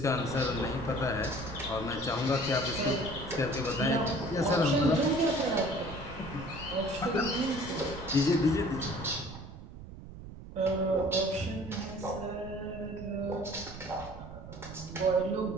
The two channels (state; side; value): noise; right; rumble, 13 dB below the sound